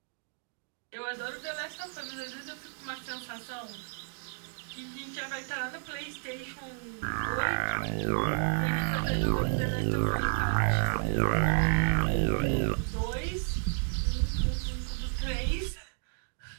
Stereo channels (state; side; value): silent; left; digital silence